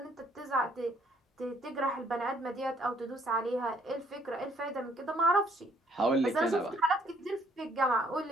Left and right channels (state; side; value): normal; both; correlation 0.65